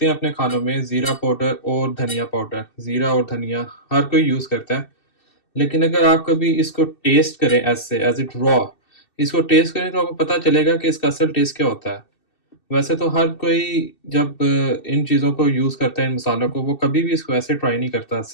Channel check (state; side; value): late; right; 2.7 ms